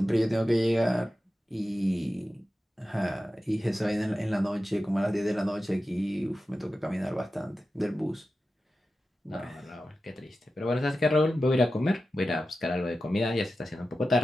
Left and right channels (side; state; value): both; normal; correlation 0.93